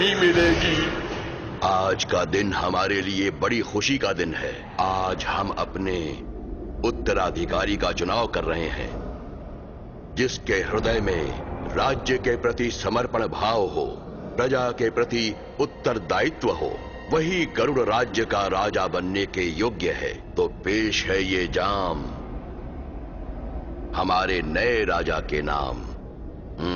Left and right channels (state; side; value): identical; both; correlation 1.00